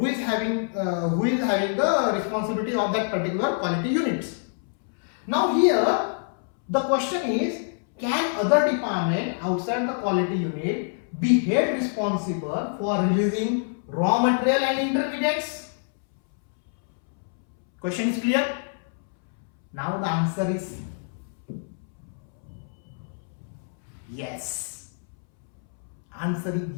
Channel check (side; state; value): right; silent; 61 dB below the other